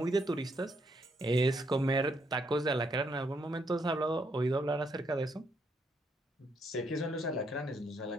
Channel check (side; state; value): both; normal; correlation 0.75